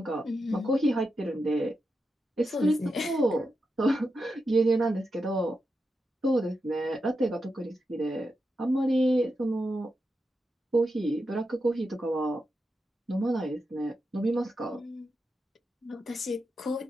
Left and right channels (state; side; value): normal; both; correlation 0.88